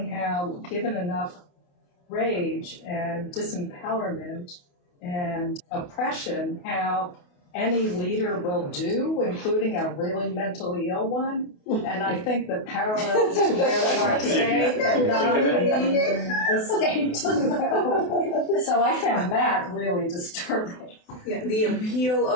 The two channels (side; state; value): right; late; 28 ms